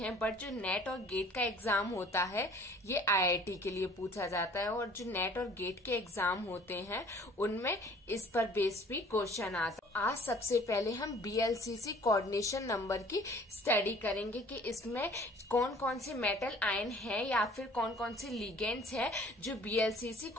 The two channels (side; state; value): both; normal; correlation 0.52